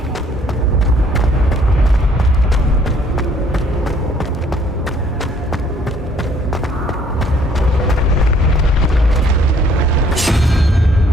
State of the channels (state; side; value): normal; both; correlation 0.62